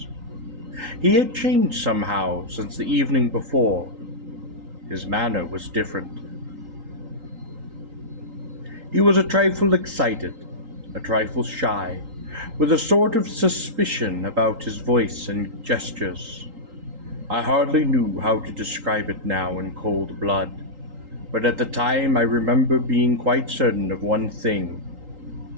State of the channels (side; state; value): left; late; 3.8 ms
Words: He had changed somehow since the evening before. His manner was different. He was a trifle excited, a trifle shy, with a sort of suspicion about his voice and gestures. I hardly knew how to describe it now in cold blood, but at the time I remember being quite certain of one thing,